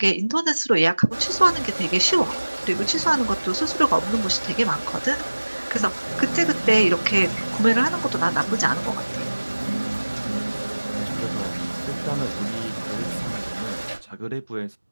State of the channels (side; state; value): both; inverted; correlation -1.00